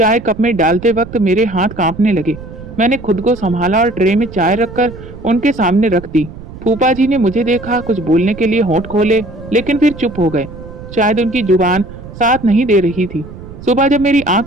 कप में डालते वक्त मेरे हाथ कांपने लगे। मैंने खुद को संभाला और ट्रे में चाय रखकर उनके सामने रख दी। फूफा जी ने मुझे देखा, कुछ बोलने के लिए होंठ खोले, लेकिन फिर चुप हो गए। शायद उनकी जुबान साथ नहीं दे रही थी। सुबह जब मेरी आंख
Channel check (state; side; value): noise; right; rumble, 14 dB below the sound